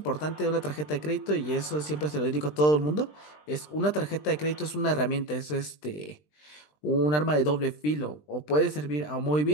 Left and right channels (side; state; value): right; late; 20 ms